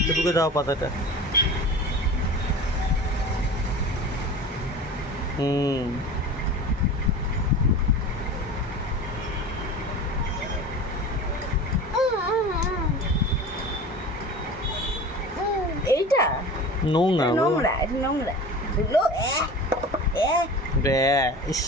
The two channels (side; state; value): both; normal; correlation 0.35